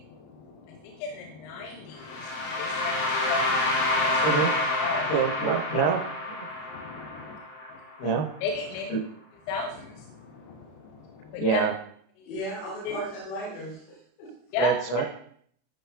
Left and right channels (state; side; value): late; right; 33 ms